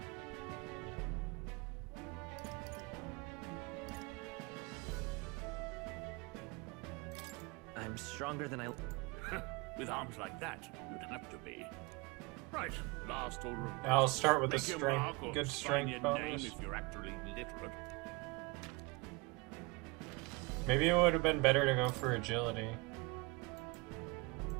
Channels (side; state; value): left; quieter; 24.9 dB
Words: I'm stronger than I... With arms like that, you'd have to be. Right, last order of... Now I'll start with a Make your strength, mark or good sign strength your bonus. name if you're actually literate. Maybe it would have been better to go for agility.